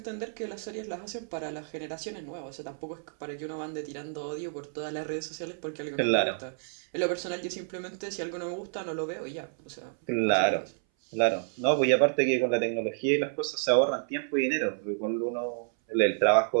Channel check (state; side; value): silent; left; 58 dB below the other